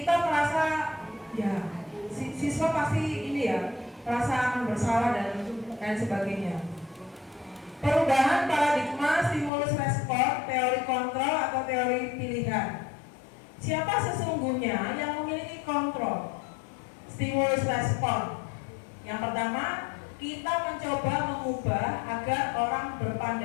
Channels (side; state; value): right; drops out; at 9.5 s